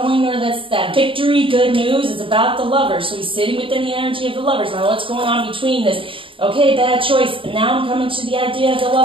or that's that victory, good news. It's about the Lovers. So he's sitting within the energy of the Lovers. Now what's going on between this? Okay, bad choice. And now I'm coming to the idea of the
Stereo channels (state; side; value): late; left; 0.25 ms